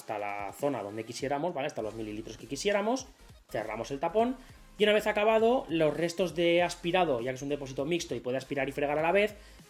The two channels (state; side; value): identical; both; correlation 1.00